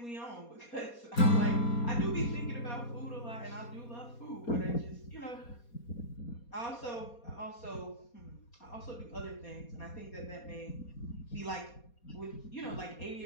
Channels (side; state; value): right; late; 4.2 ms